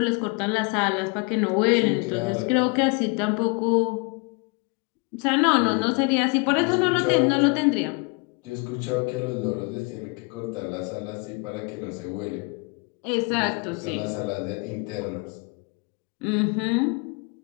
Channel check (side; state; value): right; quieter; 31.1 dB